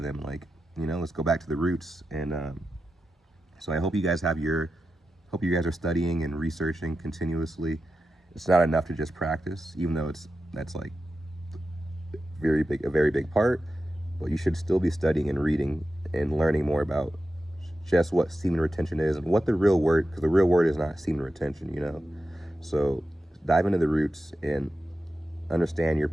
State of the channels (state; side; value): normal; both; correlation 0.91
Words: them. Like, you know, let's go back to the roots. And so I hope you guys hope you guys are studying and researching continuously. It's not enough to just practice, even though that's like a very big part, but you should still be studying and reading and learning more about just what semen retention is and what the real word, because the real word is not semen retention, you know. So dive into the roots and understand your